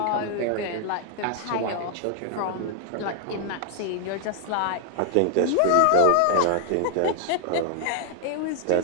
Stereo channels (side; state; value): both; different; correlation 0.00